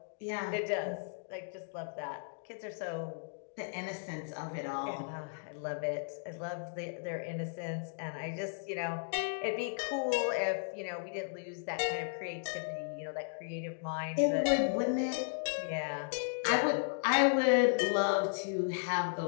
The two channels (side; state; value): right; silent; digital silence